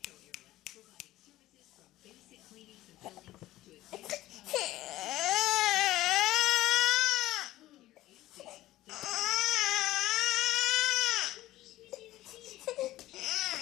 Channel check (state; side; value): quieter; right; 15.9 dB